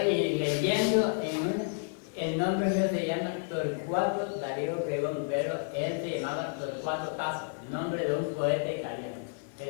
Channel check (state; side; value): silent; right; digital silence